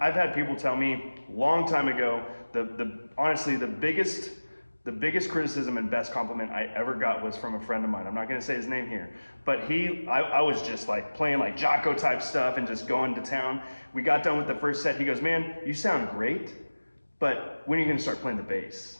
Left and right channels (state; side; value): inverted; both; correlation -1.00